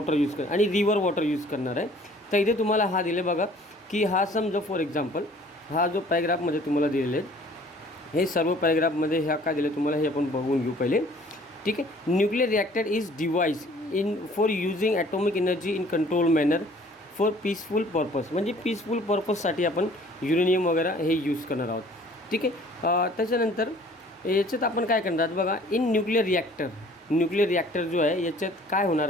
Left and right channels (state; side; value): normal; both; correlation 0.53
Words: यूज कर आणि रिव्हर वॉटर यूज करणार आहे. तर इथे तुम्हाला हा दिले बघा की हा समजा फॉर एक्झाम्पल हा जो पॅराग्राफमध्ये तुम्हाला दिलेले आहेत, हे सर्व पॅराग्राफमध्ये ह्या काय दिले तुम्हाला हे आपण बघून घेऊ पहिले. ठीक आहे. Nuclear reactor is device for using atomic energy in control manner for peaceful purpose. म्हणजे पीसफुल पर्पजसाठी आपण युरेनियम वगैरे हे यूज करणार आहोत. ठीक आहे. त्याच्यानंतर याच्यात आपण काय करणार बघा, इन न्यूक्लिअर रिॲक्टर जो आहे याच्यात काय होणार,